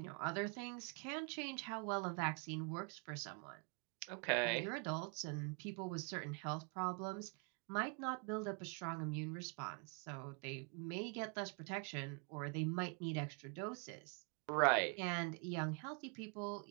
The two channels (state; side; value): quieter; left; 36.3 dB